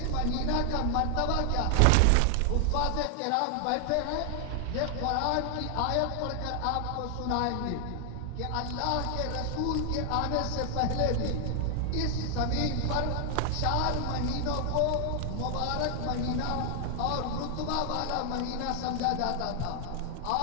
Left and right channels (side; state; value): both; different; correlation 0.00